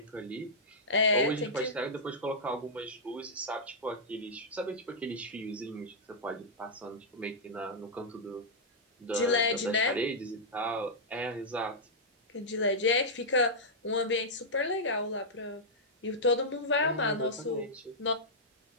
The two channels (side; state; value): both; normal; correlation -0.09